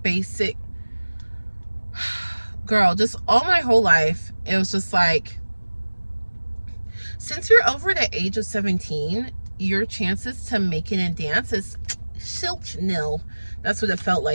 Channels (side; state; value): both; inverted; correlation -1.00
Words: girl, just all my whole life, it was just like, since you're over the age of 17, your chances to make it in dance is nil. That's what it felt